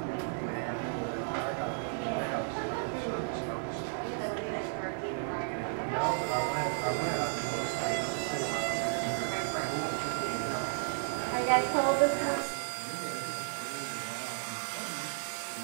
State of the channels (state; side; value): silent; left; digital silence